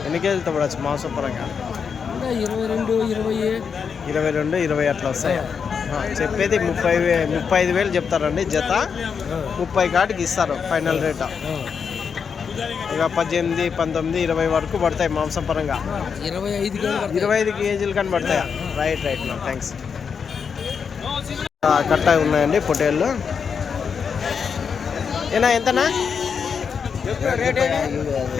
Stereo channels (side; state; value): right; quieter; 6.3 dB